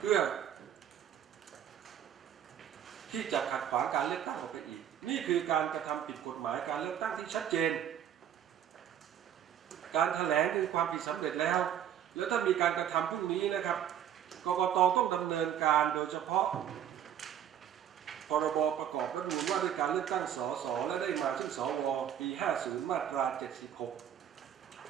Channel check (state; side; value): quieter; left; 9.8 dB